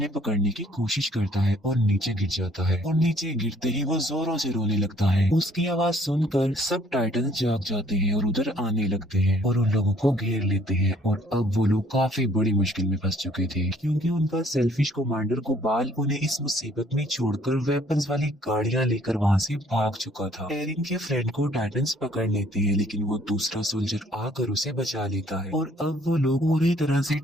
पकड़ने की कोशिश करता है और नीचे गिर जाता है और नीचे गिरते ही वो जोरों से रोने लगता है। उसकी आवाज सुनकर सब टाइटन जाग जाते हैं और उधर आने लगते हैं और उन लोगों को घेर लेते हैं और अब वो लोग काफी बड़ी मुश्किल में फंस चुके थे क्योंकि उनका सेल्फिश कमांडर कुबाल उन्हें इस मुसीबत में छोड़कर वेपन्स वाली गाड़ियां लेकर वहाँ से भाग चुका था। एरिन के फ्रेंड को टाइटन्स पकड़ लेते हैं लेकिन वो दूसरा सोल्जर आकर उसे बचा लेता है और अब वो लोग पूरी तरह से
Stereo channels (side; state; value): both; normal; correlation 0.61